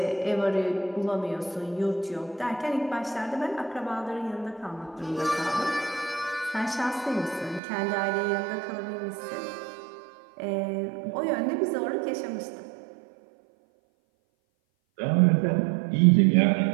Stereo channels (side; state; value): left; drops out; at 7.6 s